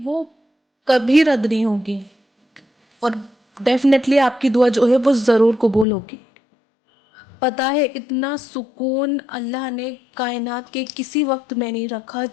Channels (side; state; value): right; drops out; at 5.9 s